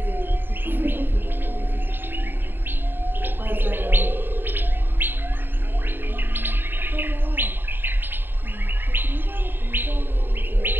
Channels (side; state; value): left; late; 0.097 ms